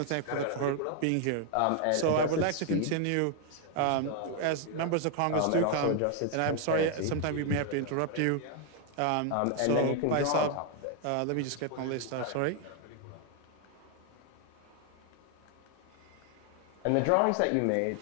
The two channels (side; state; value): both; different; correlation 0.00